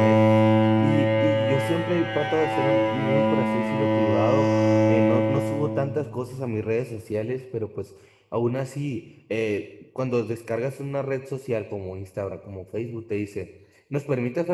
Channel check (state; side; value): identical; both; correlation 1.00